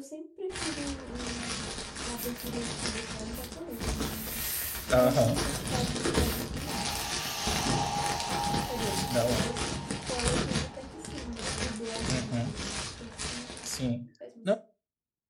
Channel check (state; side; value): identical; both; correlation 1.00